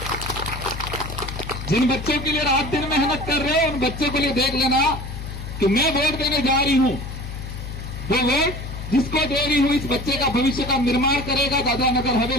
जिन बच्चों के लिए रात दिन मेहनत कर रहे हो, उन बच्चों के लिए देख लेना कि मैं वोट देने जा रही हूं, वो वोट जिसको दे रही हूं, इस बच्चे का भविष्य का निर्माण करेगा, दादरा नगर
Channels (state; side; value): noise; left; hum, 8 dB below the sound